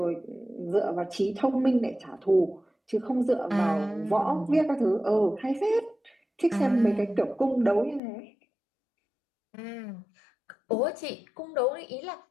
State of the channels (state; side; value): drops out; right; at 8.0 s